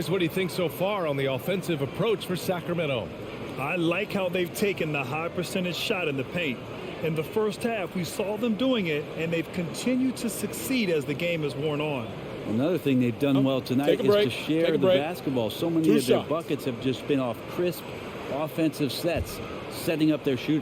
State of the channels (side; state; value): both; identical; correlation 1.00